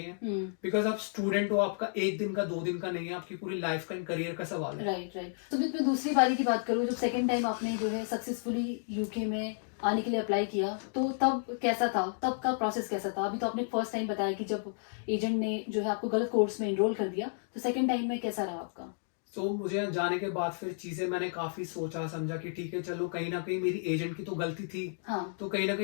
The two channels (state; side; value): silent; right; digital silence